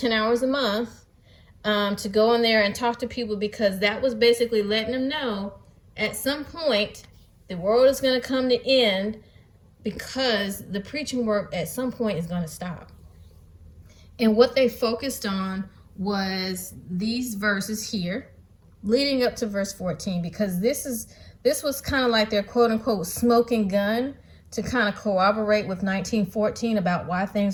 hours a month to go in there and talk to people, because that was basically letting them know at some point the world is going to come to end, because the preaching work at some point is going to stop. And what they focused on was these verses here leading up to verse 14, because this was kind of like their quote unquote smoking gun to kind of corroborate with 1914 about why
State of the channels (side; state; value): both; identical; correlation 1.00